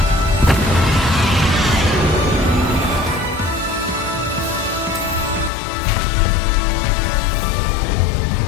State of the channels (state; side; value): drops out; right; at 5.5 s